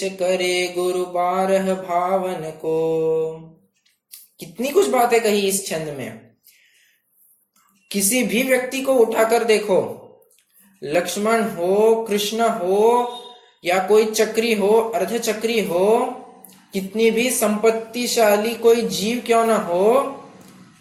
करे गुरु बारह भावन को। कितनी कुछ बातें कही इस छंद में। किसी भी व्यक्ति को उठाकर देखो, लक्ष्मण हो, कृष्ण हो, या कोई चक्री हो, अर्धचक्री हो, कितनी भी संपत्तिशाली कोई जीव क्यों ना हो,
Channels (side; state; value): both; identical; correlation 1.00